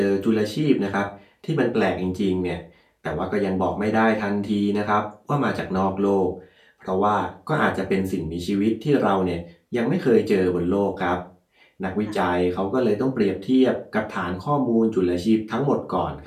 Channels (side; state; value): both; identical; correlation 1.00